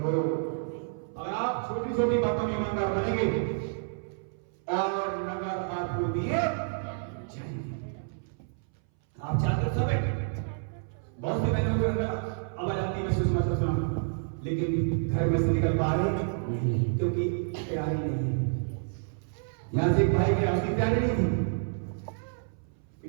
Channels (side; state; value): left; silent; 58 dB below the other